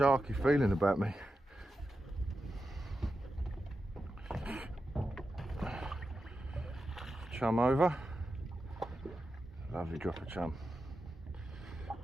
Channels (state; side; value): normal; both; correlation 0.90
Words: feeling about me. Chum over. Lovely drop of chum.